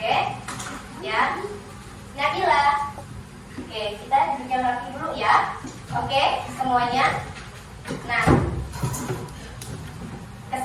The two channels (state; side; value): identical; both; correlation 1.00